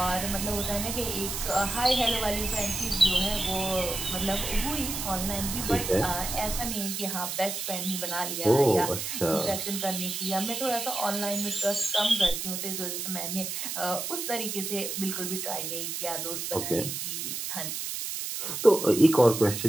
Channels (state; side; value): noise; right; hiss, 4 dB below the sound